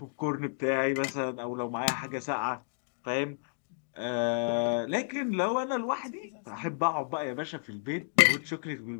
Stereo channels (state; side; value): silent; right; digital silence